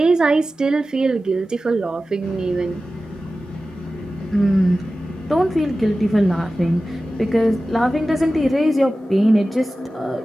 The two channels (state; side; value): normal; both; correlation 0.95